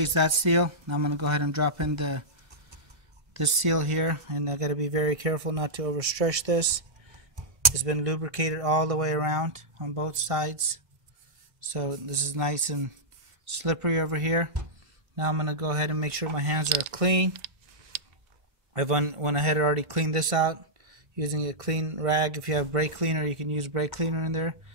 that seal. Now I'm going to go ahead and drop in this seal here, and I got to be very careful not to overstretch this. It's been lubricated all the way around on both sides, so this is nice and slippery over here. Now I'm going to go ahead and make sure my hands are clean. I've went ahead and already cleaned this out using a clean rag. If you have brake cleaner, you can use brake cleaner in there.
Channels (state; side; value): late; left; 1.6 ms